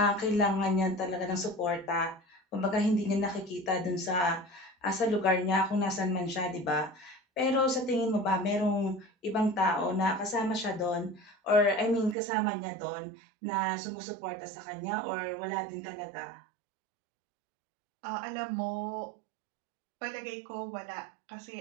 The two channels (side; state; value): left; drops out; at 12.2 s